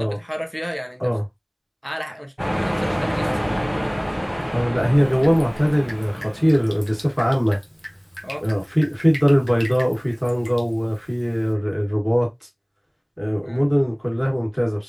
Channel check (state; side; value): identical; both; correlation 1.00